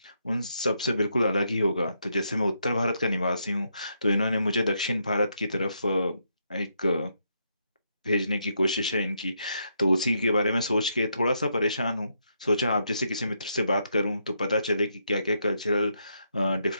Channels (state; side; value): inverted; both; correlation -0.78